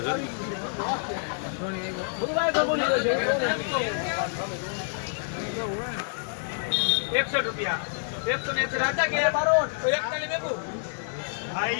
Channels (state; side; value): silent; right; digital silence